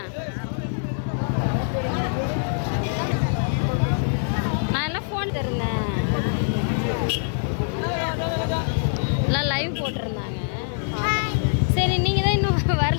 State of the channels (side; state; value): right; silent; 57 dB below the other